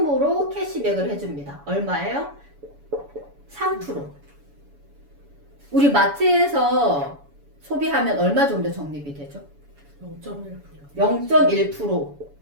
캐시백을 해줍니다. 얼마예요? 3%. 우리 마트에서 소비하면 얼마 정도 적립이 되죠? 0.1%. 0.1%.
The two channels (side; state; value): left; late; 7.0 ms